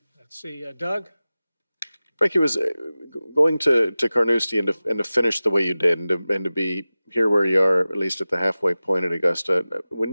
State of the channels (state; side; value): inverted; both; correlation -0.96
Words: Let's see, Doug? Frankie, was going to Carnoustie and to finish the way you did and to be here where you are, at least at the halfway point at Augusta.